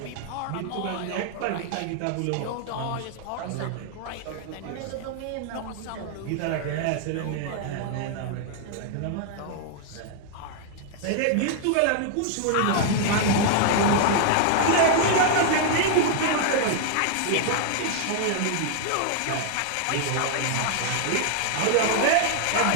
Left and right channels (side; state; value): both; different; correlation 0.00